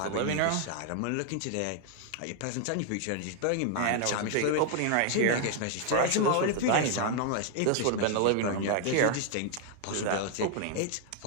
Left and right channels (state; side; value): different; both; correlation 0.00